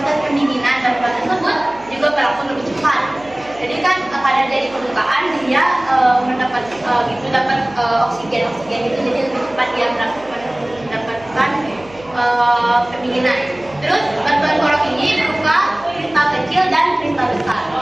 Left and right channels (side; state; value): right; noise; hum, 22 dB below the sound